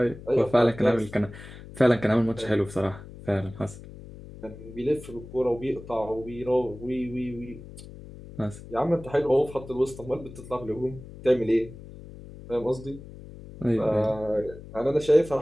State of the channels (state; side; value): noise; left; hum, 16 dB below the sound